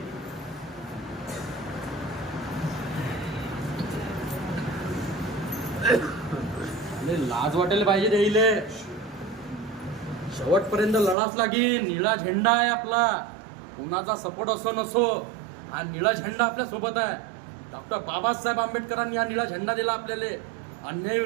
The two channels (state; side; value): drops out; left; at 11.2 s